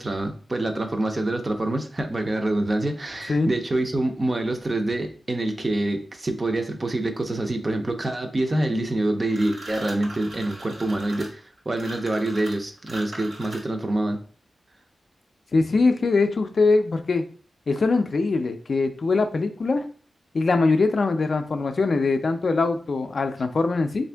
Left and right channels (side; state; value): both; normal; correlation 0.92